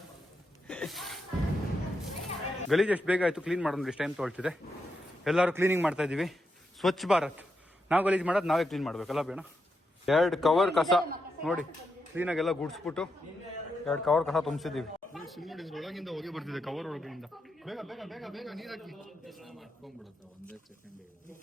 ಗಲೀಜ್ ಎಷ್ಟು ಬೇಗ ಆಯ್ತು ಕ್ಲೀನ್ ಮಾಡೋದು. ಎಷ್ಟು ಟೈಮ್ ತೊಗೊಳ್ತಿದೆ. ಎಲ್ಲರೂ ಕ್ಲೀನಿಂಗ್ ಮಾಡ್ತಾ ಇದೀವಿ. ಸ್ವಚ್ಛ ಭಾರತ್. ನಾವು ಗಲೀಜ್ ಮಾಡೋದು ನಾವೇ ಕ್ಲೀನ್ ಮಾಡ್ಬೇಕಲ್ಲ ಬೇಡ. 2 ಕವರ್ ಕಸ ನೋಡಿ ಕ್ಲೀನಾಗೆಲ್ಲ ಗುಡ್ಸ್ಬಿಟ್ಟು 2 ಕವರ್ ಕಸ ತುಂಬಿಸಿದೀವಿ. ಒಳಗಿಂದ ಹೋಗಿ ಬರ್ತಿದೆ ಕವರ್ ಒಳಗಿಂದ. ಬೇಗ ಬೇಗ ಬೇಗ ಬೇಗ ನೀರ್ ಹಾಕಿ.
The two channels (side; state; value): both; normal; correlation 0.84